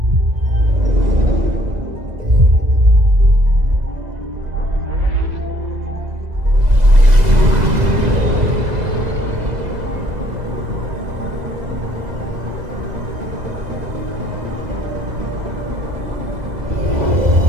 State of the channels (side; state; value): left; late; 2.0 ms